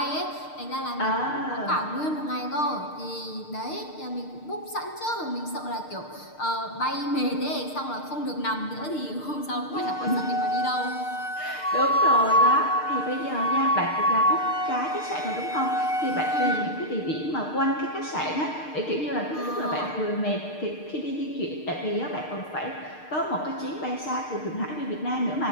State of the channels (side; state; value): right; late; 6.6 ms